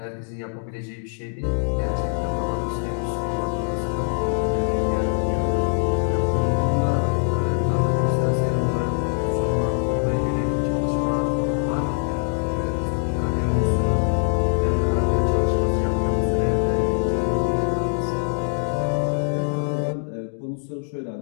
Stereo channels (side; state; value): right; silent; digital silence